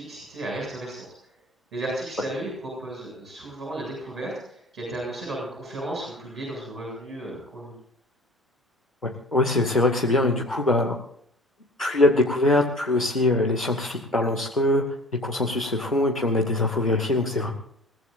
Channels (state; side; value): normal; both; correlation 0.43